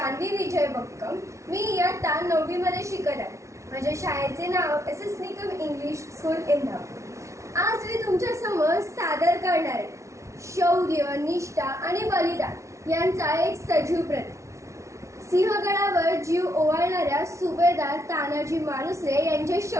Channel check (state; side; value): late; left; 0.14 ms